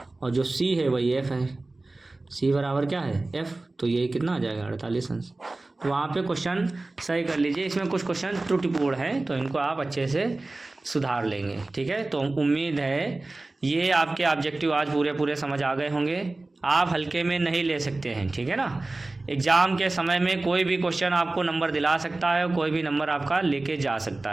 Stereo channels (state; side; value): quieter; left; 3.0 dB